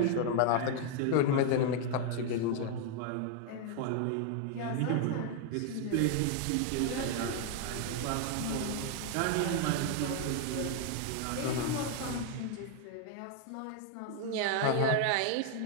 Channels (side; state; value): both; different; correlation 0.00